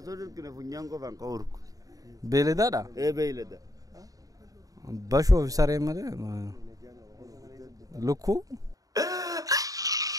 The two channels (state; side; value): late; left; 0.17 ms